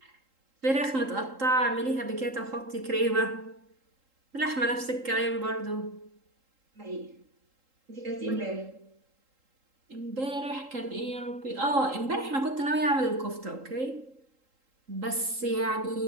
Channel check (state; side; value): late; left; 3.8 ms